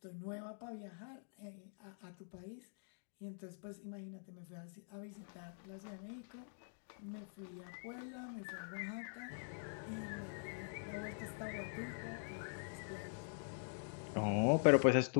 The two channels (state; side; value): silent; right; digital silence